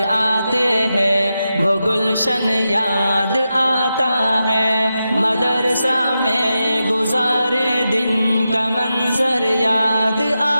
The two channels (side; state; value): both; inverted; correlation -0.89